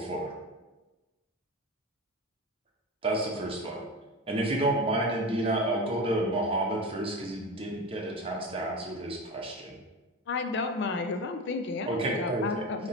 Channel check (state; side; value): normal; both; correlation 0.26